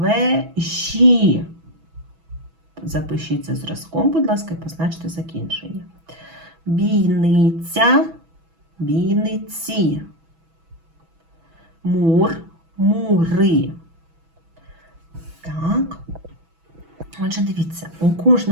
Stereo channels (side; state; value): left; late; 6.1 ms